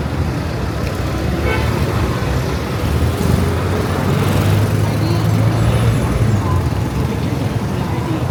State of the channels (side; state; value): both; identical; correlation 1.00